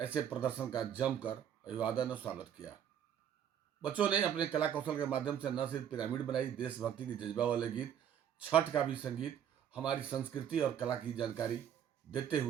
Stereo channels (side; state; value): left; quieter; 9.2 dB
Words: ऐसे प्रदर्शन का जमकर अभिवादन और स्वागत किया। बच्चों ने अपने कला कौशल के माध्यम से न सिर्फ पिरामिड बनाई, देशभक्ति की जज्बा वाले गीत, छठ का भी संगीत, हमारी संस्कृति और कला की जानकारी देते